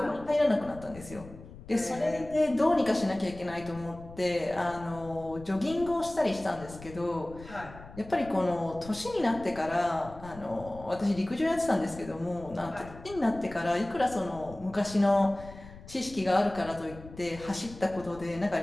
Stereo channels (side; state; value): left; noise; rumble, 17 dB below the sound